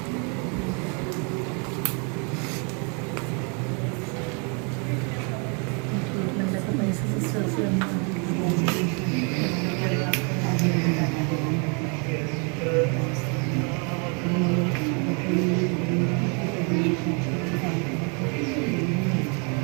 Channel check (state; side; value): quieter; left; 36.0 dB